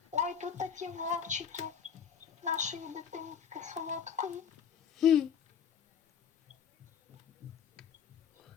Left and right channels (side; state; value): right; quieter; 7.6 dB